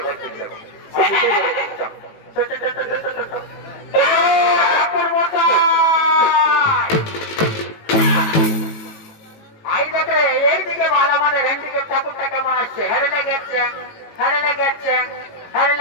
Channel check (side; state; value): right; late; 18 ms